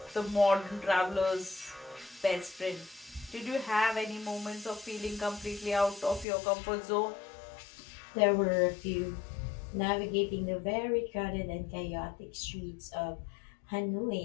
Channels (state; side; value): drops out; right; at 6.2 s